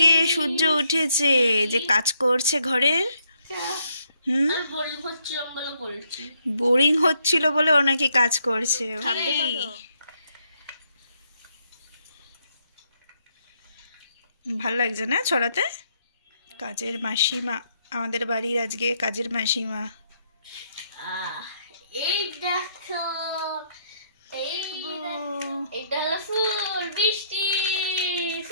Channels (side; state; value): both; inverted; correlation -0.73